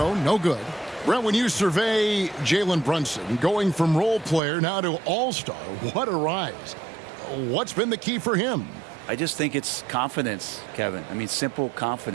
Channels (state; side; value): drops out; left; at 4.4 s